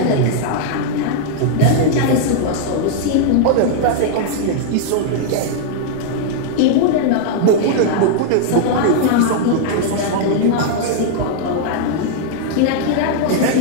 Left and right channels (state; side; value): different; both; correlation -0.01